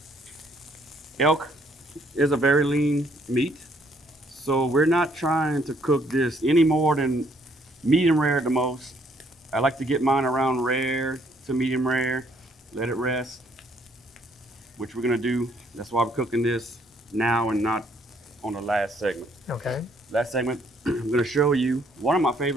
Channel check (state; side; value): normal; both; correlation 0.67